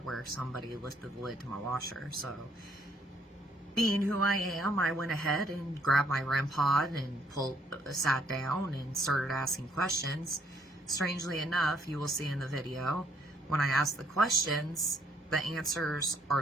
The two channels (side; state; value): both; normal; correlation 0.68